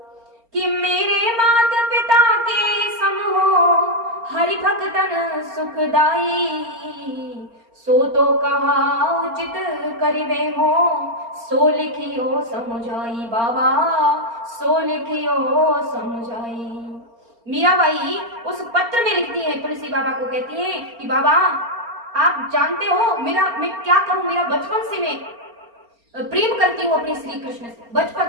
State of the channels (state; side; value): late; left; 4.3 ms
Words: कि मेरे माता पिता के सम हो हरि भक्तन सुखदाई, सो तो कहा उचित करिबे हो सो लिखियो समझाई। बाबा सो लिखियो समझाई। मीराबाई उस पत्र में लिखती है, तुलसी बाबा को कहती है कि बाबा आप जानते हो मैं क्या करूं। मेरा बचपन से मैं प्रेम करती हूँ अपने श्री कृष्ण से, बचपन